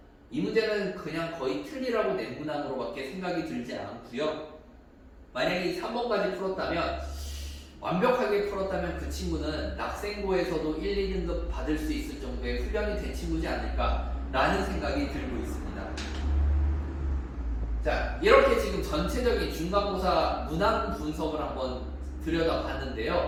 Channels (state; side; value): identical; both; correlation 1.00